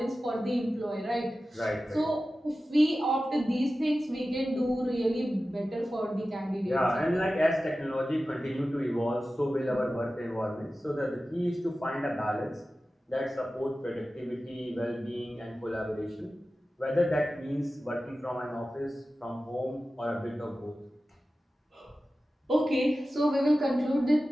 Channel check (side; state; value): both; normal; correlation 0.95